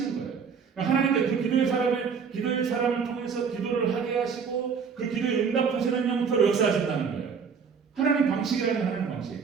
거예요. 하나님께서 그 기도의 사람을 통해서 기도를 하게 하시고 그 기도에 응답하시는 형태로 역사하신다는 거예요. 하나님 방식이라는 하나님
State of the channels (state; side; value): quieter; left; 6.2 dB